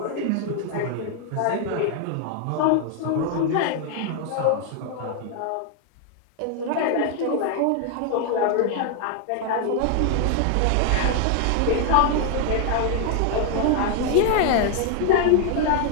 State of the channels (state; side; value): different; both; correlation 0.00